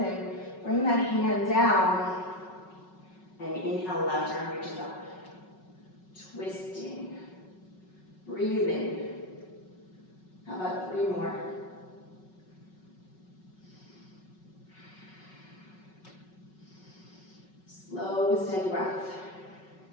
that hand down. And inhale, left arm reaches up. Twisting, breathing. How about 3 more? Slow, steady breath.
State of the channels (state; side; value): late; right; 5.4 ms